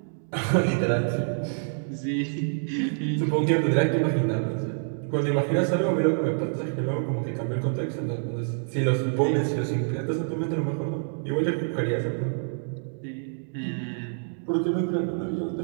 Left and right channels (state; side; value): silent; left; digital silence